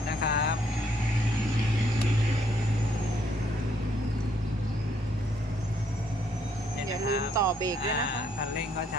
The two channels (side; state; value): both; normal; correlation 0.69